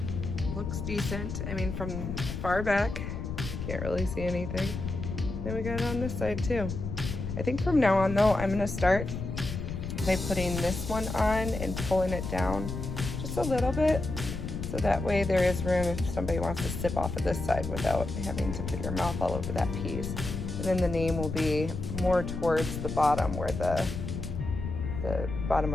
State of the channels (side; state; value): left; noise; rumble, 5 dB below the sound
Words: looks decent. I mean, from far back, can't really see anything. Then we got it on this side too. I think from now on though, I'm gonna start by putting this one on and pulling it down just a little bit, so that way there is room if somebody wants to sip off of this side without having to put your mouth all over that piece. And then the name will be more towards the bottom where the bottom